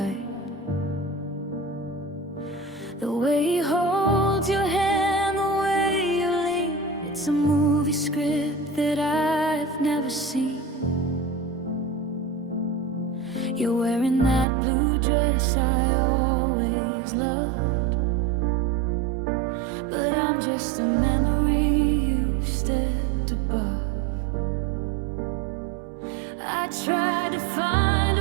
The way he holds your hand, the way you lean, it's a movie script that I've never seen. You're wearing that blue dress I always loved, but I'm just a memory you've stepped above. I tried to find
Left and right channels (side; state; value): left; drops out; at 14.5 s